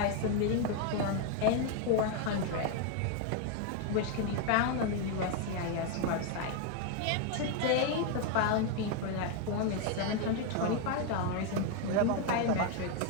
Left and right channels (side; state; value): both; different; correlation 0.01